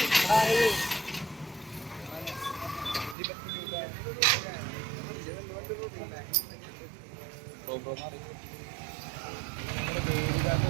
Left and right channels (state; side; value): drops out; left; at 3.2 s